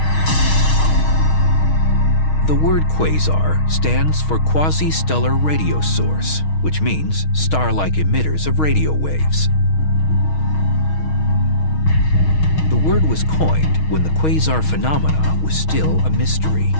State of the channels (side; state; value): right; late; 6.4 ms